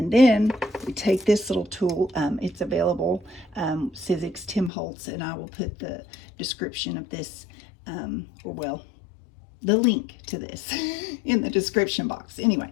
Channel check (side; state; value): right; drops out; at 4.7 s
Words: then we take this little tool. It's available, Sizzix timholtz, and I will put the description of this, or well, the link to this in the description box.